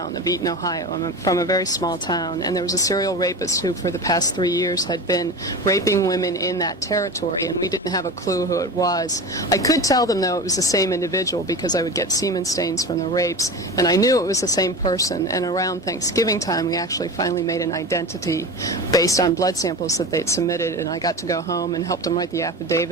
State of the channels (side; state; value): both; normal; correlation 0.29